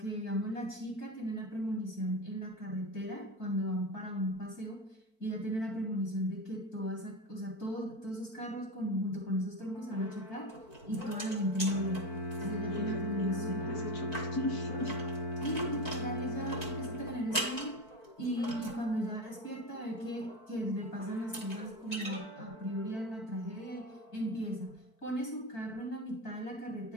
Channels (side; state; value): right; late; 4.5 ms